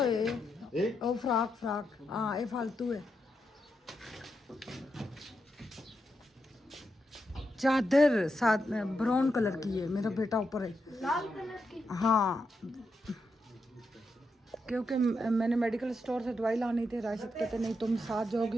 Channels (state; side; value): normal; both; correlation 0.84